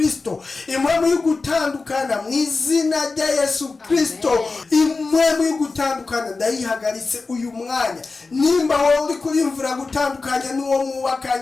impwemu yo gutandukana mu izina rya Yesu Kristo. impwemu yo gutandukana ndayihagaritse uyu mwanya. nimba wowe uri kurimvura gutandukanya n'uwo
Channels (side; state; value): right; quieter; 3.9 dB